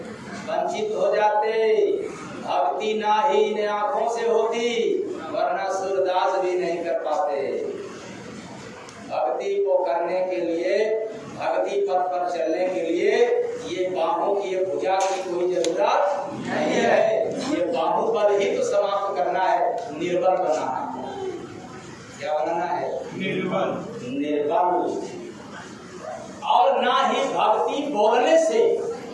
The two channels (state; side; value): identical; both; correlation 1.00